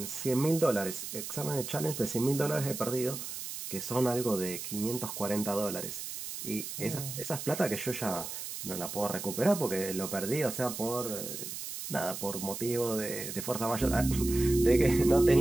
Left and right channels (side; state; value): right; noise; hiss, 7 dB below the sound